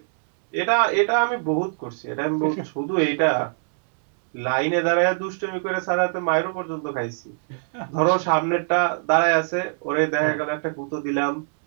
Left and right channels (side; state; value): left; silent; 63 dB below the other